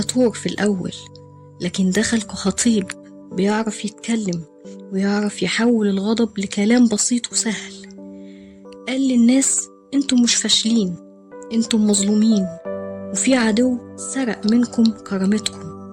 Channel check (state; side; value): identical; both; correlation 1.00